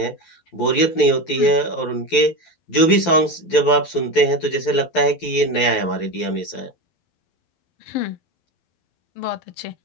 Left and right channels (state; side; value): late; right; 12 ms